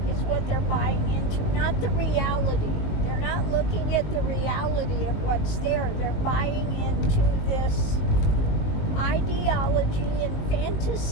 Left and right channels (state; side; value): late; right; 19 ms